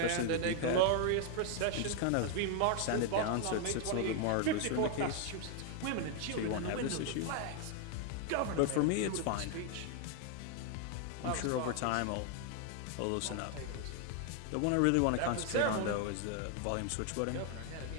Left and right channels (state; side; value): different; both; correlation 0.00